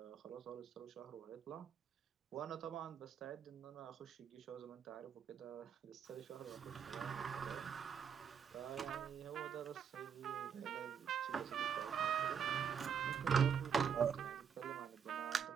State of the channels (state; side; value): quieter; left; 7.4 dB